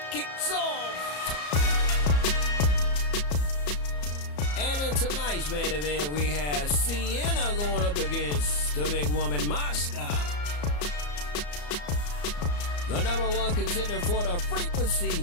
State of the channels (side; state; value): right; late; 34 ms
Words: kicks off. And in tonight's main event, we have Sienna going up against the big woman, Mashka. The #1 contender for the